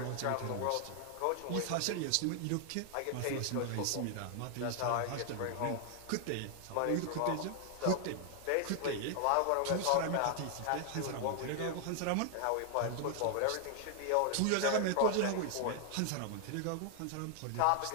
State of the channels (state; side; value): different; both; correlation 0.00